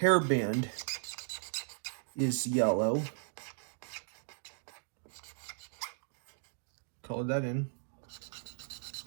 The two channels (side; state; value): left; silent; digital silence